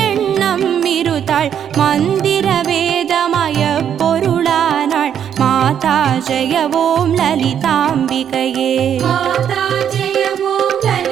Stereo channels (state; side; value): quieter; left; 9.0 dB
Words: எண்ணம் இருத்தாள் மந்திர வேதமய பொருளானாள் மாதா ஜெய ஓம் லலிதாம்பிகையே மாதா ஜெய ஓம்